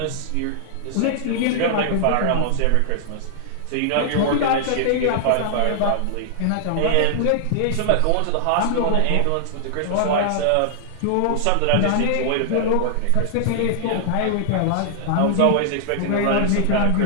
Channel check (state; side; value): different; both; correlation -0.01